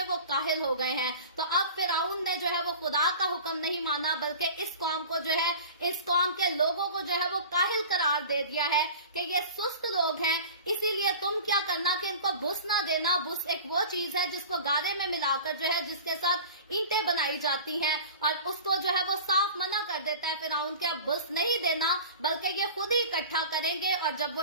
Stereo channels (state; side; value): inverted; both; correlation -0.38